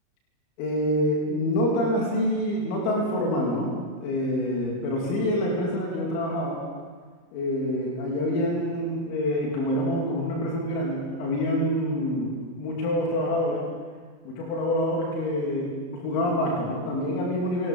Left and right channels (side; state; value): right; late; 34 ms